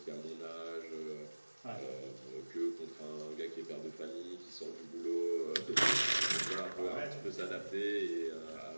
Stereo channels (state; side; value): inverted; both; correlation -1.00